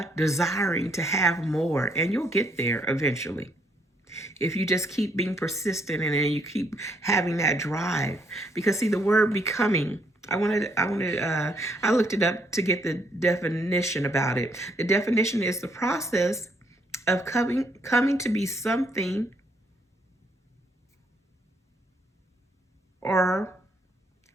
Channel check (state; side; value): normal; both; correlation 0.71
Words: desiring to have more, and you'll get there eventually. If you just keep being persistent and then you keep having that drive. Because see, the word becoming I looked it up to get the definition about it. The definition is the process of coming to be something or